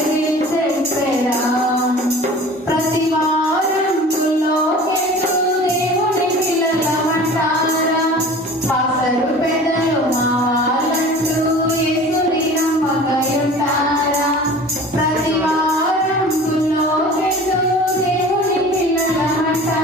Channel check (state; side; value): normal; both; correlation 0.41